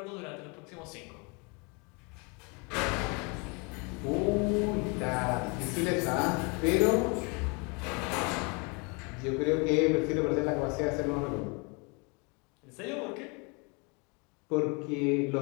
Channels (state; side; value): quieter; right; 31.7 dB